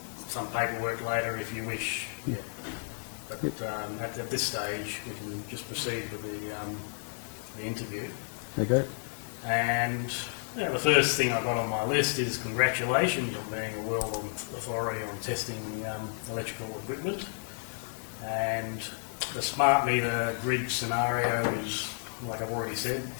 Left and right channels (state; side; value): silent; right; digital silence